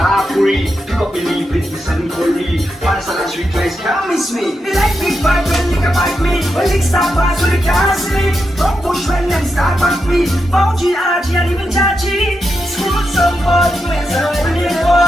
Di ko pinipit, bisan cooli. Para sa last week, guys, can't miss me. Me like big vibe when liquor bite me. When lick stop pass, when they can't sleep. Don't push when them start back me. Bounty, RG, and even Chachi. Screw some bud, where's a fully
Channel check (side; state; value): both; normal; correlation 0.86